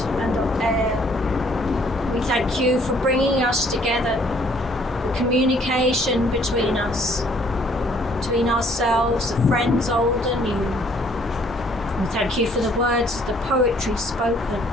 and of air. We thank you for bringing us together, the communication between us, between ourselves, the friends old and new. We thank you for the words of the poetry spoken.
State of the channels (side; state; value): both; normal; correlation 0.62